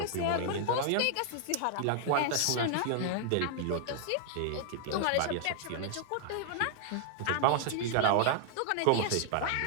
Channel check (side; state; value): both; different; correlation -0.01